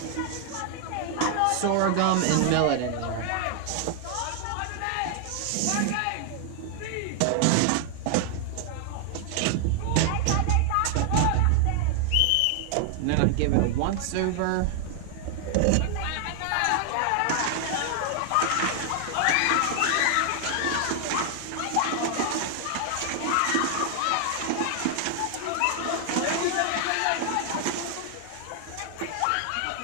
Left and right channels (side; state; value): both; different; correlation 0.00